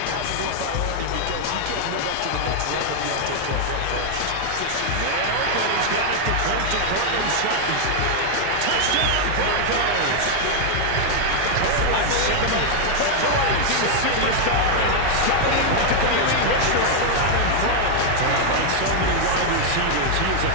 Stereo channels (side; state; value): both; different; correlation 0.00